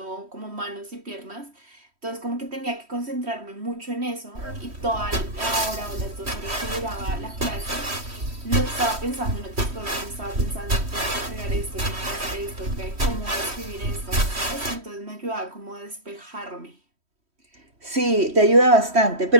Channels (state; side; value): late; left; 3.1 ms